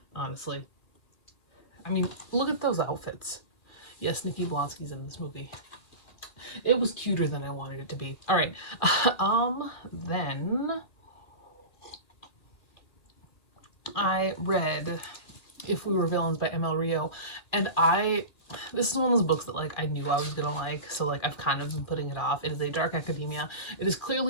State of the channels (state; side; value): late; right; 2.4 ms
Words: honestly. Look at those outfits. Yes, Nikki Blonsky's in this movie. It was cuter than I wanted it to be. All right. Then I read If We Were Villains by ML Rio, and this is one of those books that I knew I was gonna like, so I've kind of been putting it off. It is a dark academia. It is